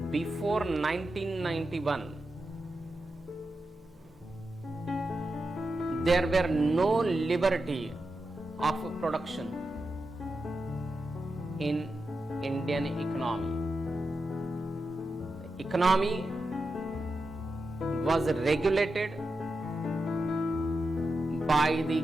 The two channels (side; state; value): both; normal; correlation 0.89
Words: before 1991, there were no liberty of production in Indian economy. The economy was regulated by the